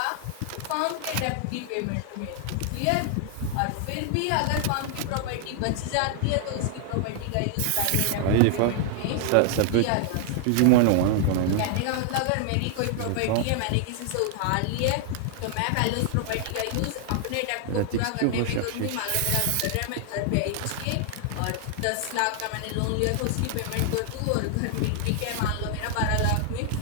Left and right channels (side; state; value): both; different; correlation 0.00